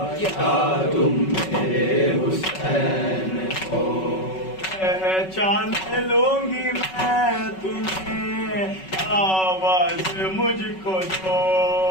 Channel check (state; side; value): late; right; 5.3 ms